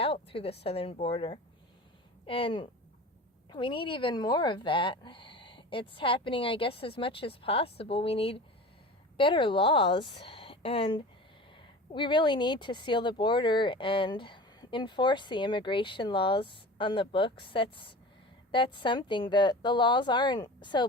through the southern border. And we need even more of that. It's happening, I guess, as much as possible. We need better laws, and we really need to seal the border and enforce the immigration laws on the books. That's something. The laws aren't so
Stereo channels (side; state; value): both; normal; correlation 0.35